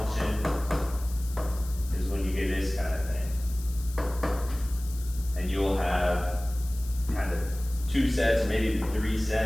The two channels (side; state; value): left; noise; hiss, 17 dB below the sound